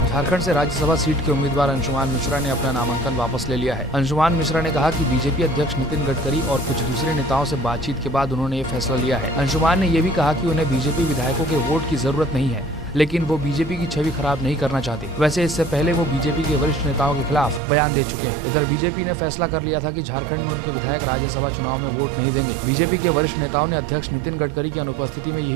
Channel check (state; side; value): drops out; left; at 17.6 s